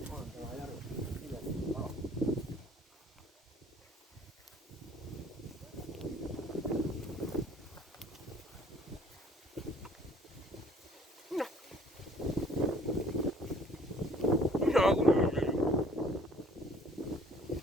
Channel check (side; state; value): both; normal; correlation 0.56